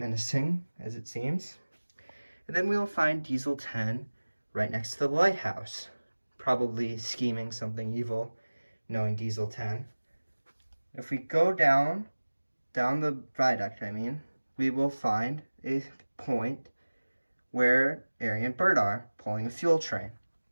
as it seems. And then we'll find Diesel 10 right next to the lighthouse, probably scheming something evil, knowing Diesel 10. If we go down the viaduct, we will find a point where Ari and Bert are, pulling a fuel train.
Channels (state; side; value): inverted; both; correlation -1.00